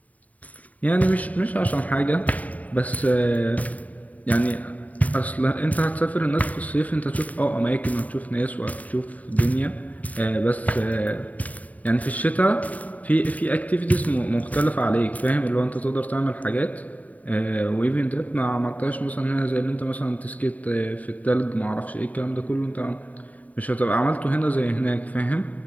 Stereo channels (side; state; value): right; late; 0.072 ms